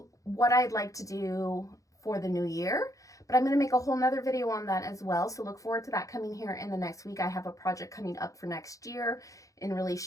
what I'd like to do for the new year. But I'm going to make a whole nother video on that as well. So look forward to that coming here in the next week. I have a project coming up for next year in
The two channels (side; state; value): right; late; 0.16 ms